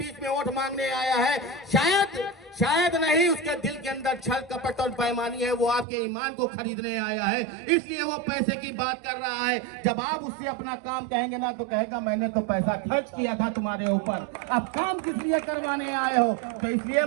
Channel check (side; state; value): left; drops out; at 5.9 s